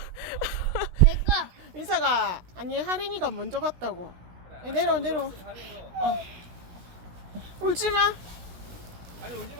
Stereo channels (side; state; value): left; late; 16 ms